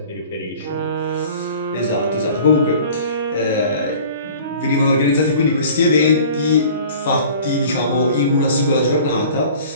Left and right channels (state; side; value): inverted; both; correlation -0.46